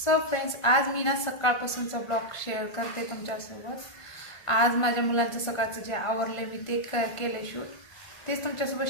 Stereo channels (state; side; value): late; right; 1.5 ms